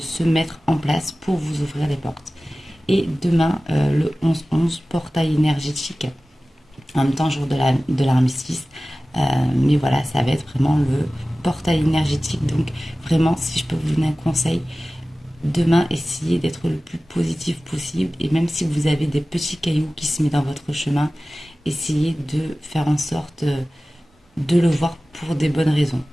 mettre en place pour vous ouvrir les portes. Et demain, le 11-11, portail énergétique, en même temps jour de l'armistice. Mais voilà, ça va être vraiment le portail énergétique. Donc vraiment, si je peux vous donner un conseil, demain, essayez d'être le plus positif possible. Et même si vous avez des petits cailloux qui se mettent dans votre chemin, essayez de faire en sorte de le voir pour des bonnes raisons.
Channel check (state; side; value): normal; both; correlation 0.96